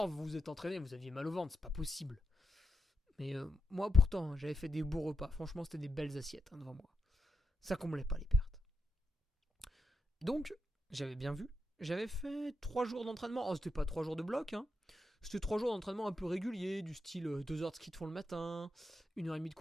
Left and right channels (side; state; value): both; normal; correlation 0.84